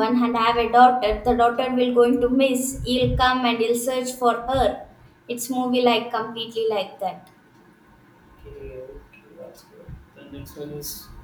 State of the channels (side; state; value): both; identical; correlation 1.00